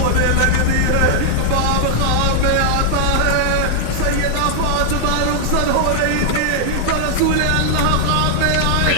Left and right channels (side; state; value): both; different; correlation -0.01